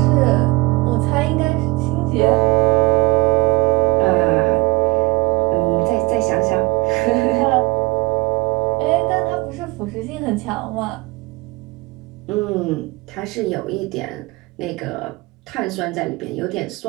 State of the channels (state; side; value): quieter; left; 20.9 dB